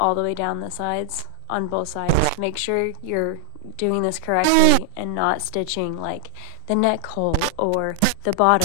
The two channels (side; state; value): both; different; correlation 0.00